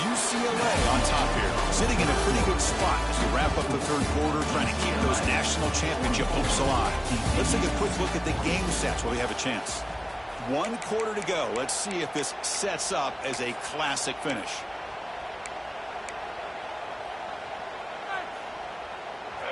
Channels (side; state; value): both; identical; correlation 1.00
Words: UCLA on top here, sitting in a pretty good spot as we wrap up the third quarter, trying to keep those national championship hopes alive. Let's take a quick look at the game sets while we have a chance. 1 quarter to go. Let's see if this sets up as a classic finish.